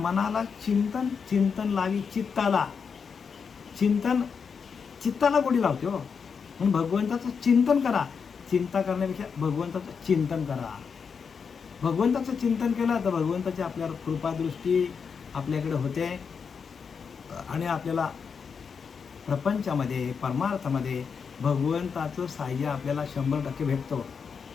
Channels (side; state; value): right; quieter; 6.0 dB